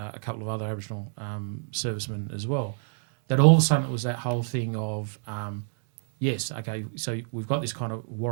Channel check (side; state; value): left; silent; digital silence